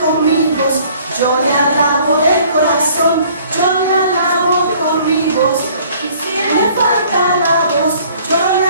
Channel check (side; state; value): both; inverted; correlation -0.56